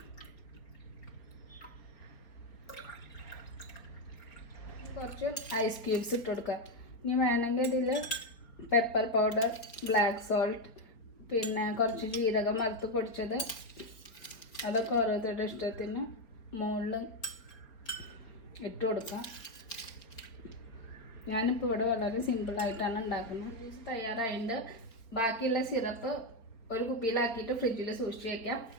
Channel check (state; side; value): late; right; 4.5 ms